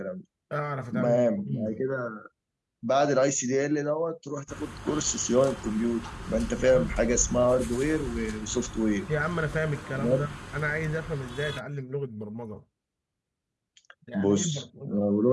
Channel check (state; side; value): identical; both; correlation 1.00